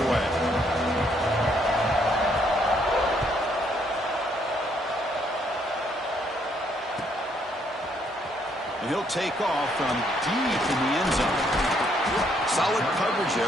And he'll take off from deep in the end zone. Solid coverage there.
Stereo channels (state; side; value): normal; both; correlation 0.70